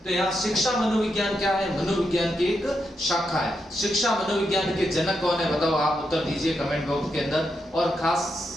तो यहाँ शिक्षा मनोविज्ञान क्या है? मनोविज्ञान की एक शाखा है। शिक्षा मनोविज्ञान के जनक कौन है? बताओ, आप उत्तर दीजिए कमेंट बॉक्स के अंदर। और खास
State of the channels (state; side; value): normal; both; correlation 0.84